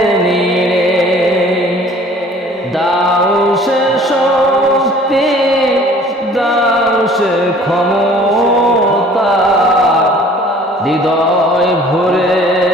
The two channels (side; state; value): both; normal; correlation 0.51